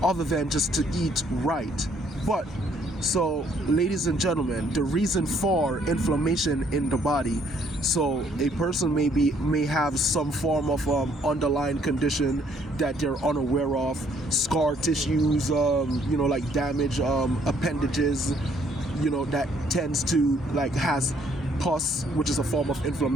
other than just to eat right? But So, ladies and gentlemen, the reason for inflammation in the body. So, a person may have some form of underlying condition that they're unaware of, scar tissues, like damage, appendages, that tends to has pus, which is a form of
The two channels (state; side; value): normal; both; correlation 0.65